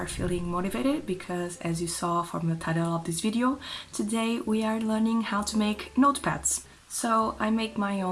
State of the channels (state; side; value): identical; both; correlation 1.00